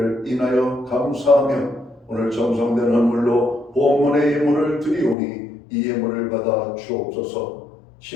인하여 감사하며 오늘 정성된 헌물로 본문의 예물을 드리오니 이 예물을 받아 주옵소서.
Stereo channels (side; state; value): right; drops out; at 5.2 s